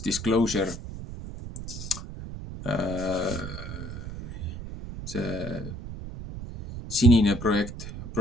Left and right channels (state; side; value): noise; right; rumble, 9 dB below the sound